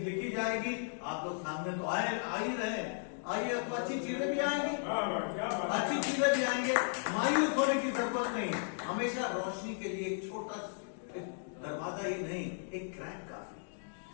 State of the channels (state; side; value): silent; right; digital silence